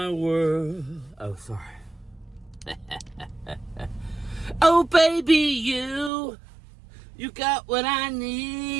world. Oh, sorry. Oh, baby, you got what I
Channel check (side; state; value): left; drops out; at 6.1 s